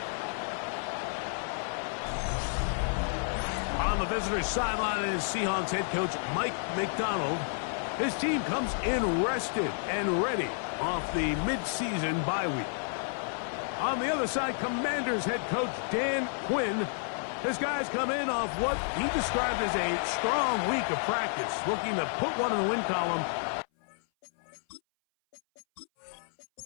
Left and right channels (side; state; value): right; silent; 57 dB below the other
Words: On the visitor's sideline is Seahawks head coach Mike McDonald. His team comes in rested and ready off the mid-season bye week. On the other side, Commanders head coach Dan Quinn. His guys come in off what he described as a strong week of practice, looking to put one in the win column.